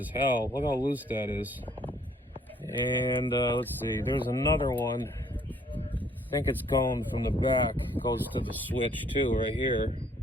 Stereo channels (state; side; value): normal; both; correlation 0.62